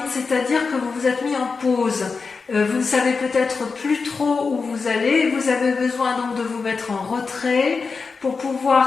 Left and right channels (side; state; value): right; quieter; 4.7 dB